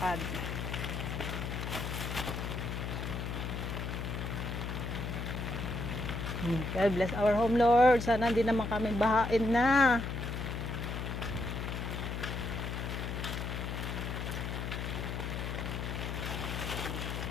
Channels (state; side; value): noise; left; hum, 3 dB below the sound